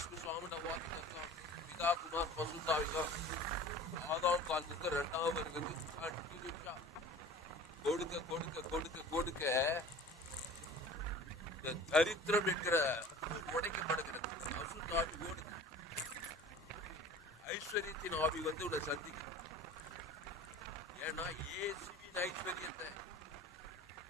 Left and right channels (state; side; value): normal; both; correlation 0.42